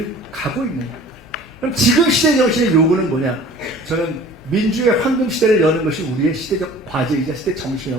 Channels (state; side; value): normal; both; correlation 0.46